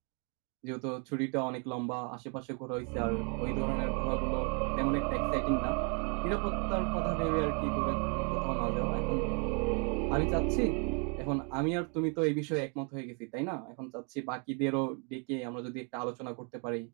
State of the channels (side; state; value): left; quieter; 37.0 dB